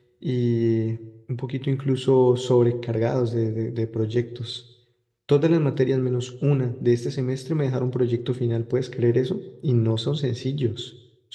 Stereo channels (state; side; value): identical; both; correlation 1.00